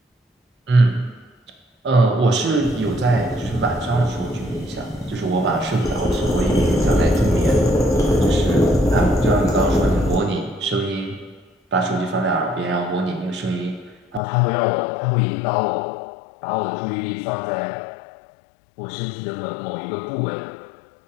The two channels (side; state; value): right; drops out; at 14.2 s